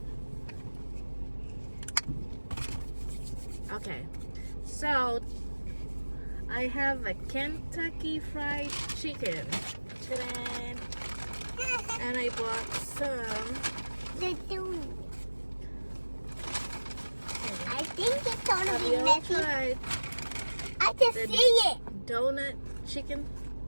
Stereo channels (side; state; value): both; inverted; correlation -1.00